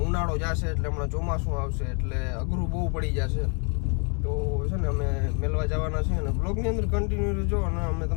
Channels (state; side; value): quieter; right; 37.7 dB